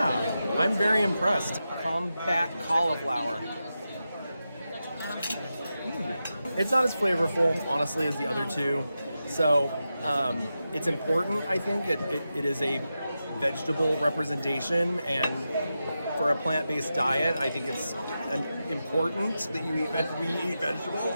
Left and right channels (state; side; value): inverted; both; correlation -0.90